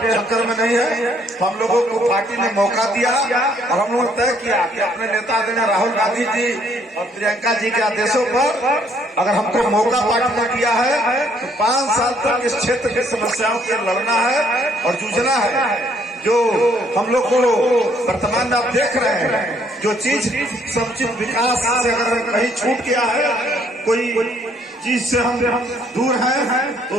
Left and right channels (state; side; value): normal; both; correlation 0.66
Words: में नहीं है। तो हम लोगों को पार्टी ने मौका दिया और हम लोगों ने तय किया कि अपने नेता आदरणीय राहुल गांधी जी और प्रियंका जी के आदेशों पर अगर हमको मौका पार्टी ने दिया है तो 5 साल तक इस क्षेत्र की समस्याओं से लड़ना है और जूझना है। जो हम लोग को वर्तमान में आप देख रहे हैं, जो चीज समुचित विकास से अगर कहीं छूट गया है, कोई चीज से हम दूर हैं, तो